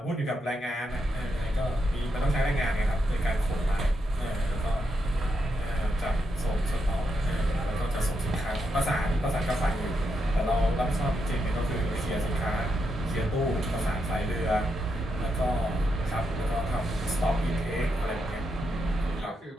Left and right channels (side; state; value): both; normal; correlation 0.82